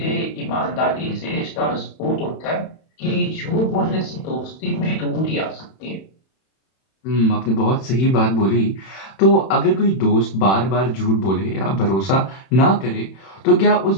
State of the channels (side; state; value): right; late; 31 ms